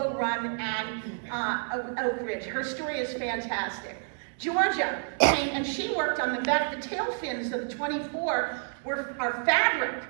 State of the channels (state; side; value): silent; left; 58 dB below the other